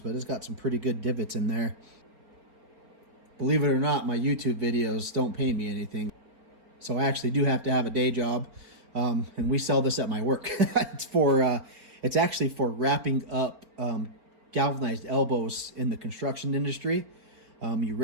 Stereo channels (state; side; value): late; left; 4.4 ms